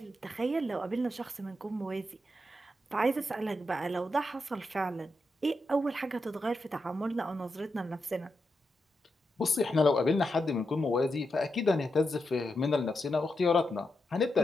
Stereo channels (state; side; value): normal; both; correlation 0.85